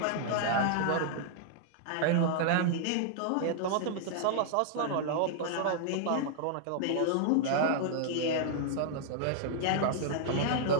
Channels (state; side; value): different; both; correlation -0.01